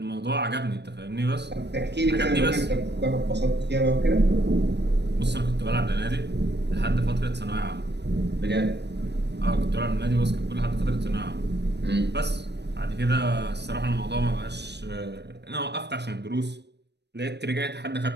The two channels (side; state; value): left; late; 0.50 ms